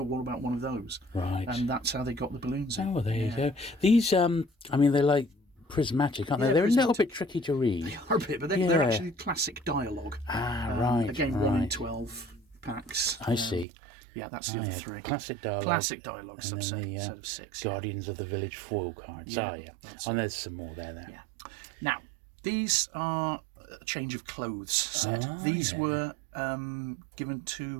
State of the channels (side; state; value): left; drops out; at 13.7 s